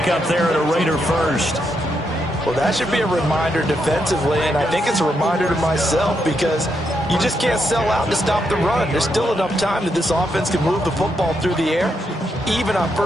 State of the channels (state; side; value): normal; both; correlation 0.81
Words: there at a Raider first. Well, that should be a reminder defensively, and I think it's a reminder to myself because you just can't sell out to stop the run. There's still enough time that this offense can move the football through the air, even on